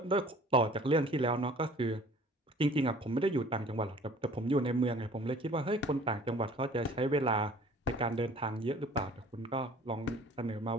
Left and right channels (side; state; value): both; normal; correlation 0.50